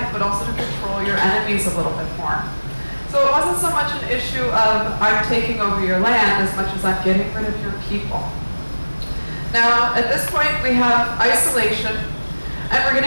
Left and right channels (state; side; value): inverted; both; correlation -1.00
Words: but also to control your enemies a little bit more. So it wasn't so much an issue of I'm taking over your land as much as I'm getting rid of your people. Now, at this point, we have isolation, and we're